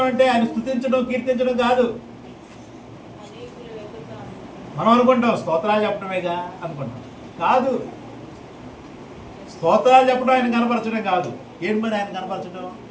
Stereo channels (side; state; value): both; identical; correlation 1.00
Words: ఆయన స్తుతించడం, కీర్తించడం కాదు. మనం అనుకుంటాం స్తోత్రాలు చెప్పడమేగా అనుకుంటాం. కాదు, స్తోత్రాలు చెప్పడం ఆయన కనపరచడం కాదు. ఏంటి మరి ఆయన కనపరచడం?